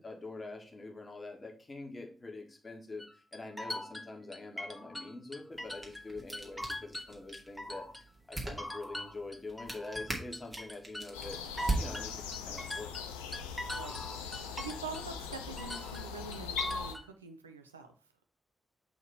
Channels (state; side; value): normal; both; correlation 0.70